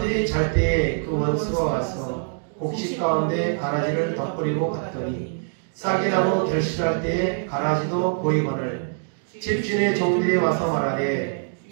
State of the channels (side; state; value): left; silent; digital silence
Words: 잘 때에 그 원수가 와서 곡식 가운데 가라지를 덧뿌리고 갔더니 싹이 나고 결실할 때에 가라지도 보이거늘 집주인의 종들이 와서 말하되